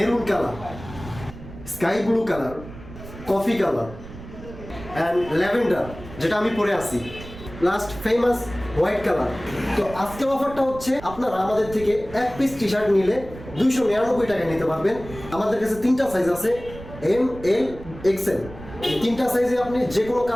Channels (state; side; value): noise; right; rumble, 15 dB below the sound